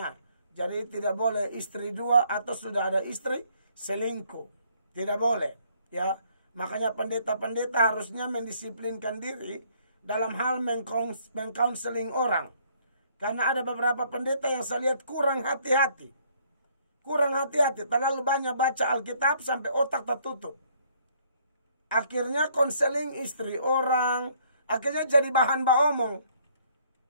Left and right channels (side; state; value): both; inverted; correlation -0.64